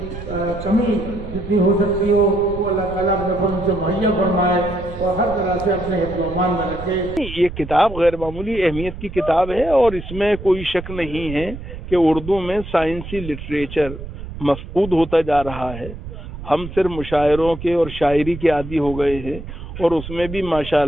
کمی جتنی ہو سکتی ہو وہ اللہ تعالیٰ اپنے فضل سے مہیا فرمائے اور ہر طرح سے اپنے حفظ و امان میں رکھے۔ یہ کتاب غیر معمولی اہمیت کی کتاب ہے، اور اس میں کوئی شک نہیں ہے کہ اردو میں سائنسی لٹریچر مفقود ہوتا جا رہا ہے۔ ہم صرف مشاعروں کے اور شاعری کے عادی ہو گئے ہیں، اور اس میں بھی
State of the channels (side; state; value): right; noise; rumble, 11 dB below the sound